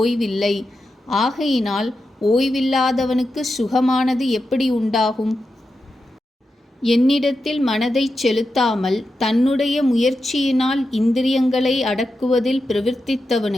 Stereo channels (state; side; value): normal; both; correlation 0.89